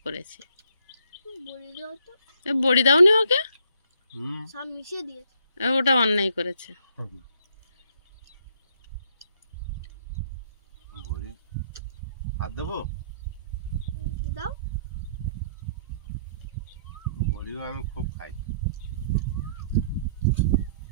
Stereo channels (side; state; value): both; inverted; correlation -0.65